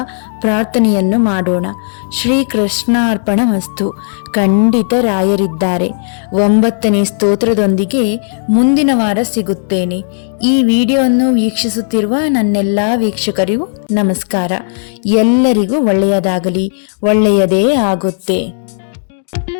ಪ್ರಾರ್ಥನೆಯನ್ನು ಮಾಡೋಣ. ಶ್ರೀಕೃಷ್ಣಾರ್ಪಣಮಸ್ತು. ಖಂಡಿತ ರಾಯರಿದ್ದಾರೆ. 9ನೇ ಸ್ತೋತ್ರದೊಂದಿಗೆ ಮುಂದಿನ ವಾರ ಸಿಗುತ್ತೇನೆ. ಈ ವಿಡಿಯೋವನ್ನು ವೀಕ್ಷಿಸುತ್ತಿರುವ ನನ್ನೆಲ್ಲ ವೀಕ್ಷಕರಿಗೂ ನಮಸ್ಕಾರ. ಎಲ್ಲರಿಗೂ ಒಳ್ಳೆಯದಾಗಲಿ, ಒಳ್ಳೆಯದೇ ಆಗುತ್ತೆ.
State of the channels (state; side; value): silent; right; digital silence